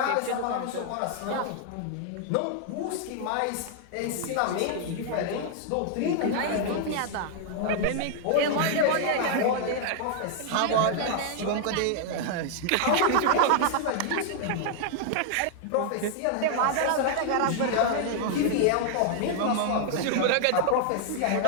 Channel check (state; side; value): different; both; correlation 0.00